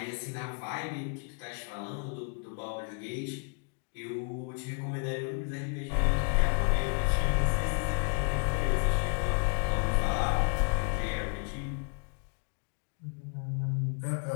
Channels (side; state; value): right; quieter; 38.3 dB